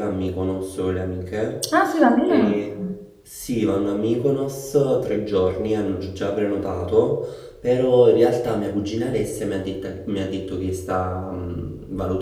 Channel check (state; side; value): identical; both; correlation 1.00